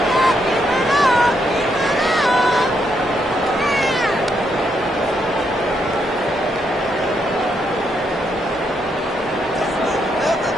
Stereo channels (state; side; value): normal; both; correlation 0.77